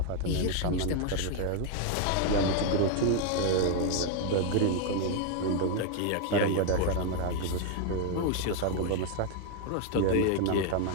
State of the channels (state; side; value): different; both; correlation 0.00